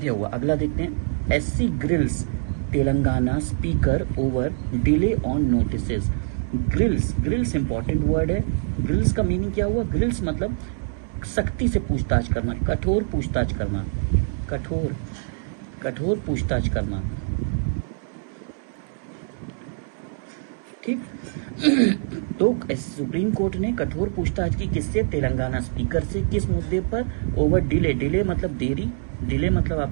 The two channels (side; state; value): left; silent; 62 dB below the other